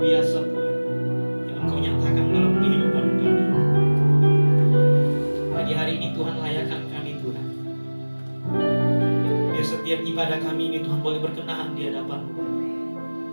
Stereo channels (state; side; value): inverted; both; correlation -1.00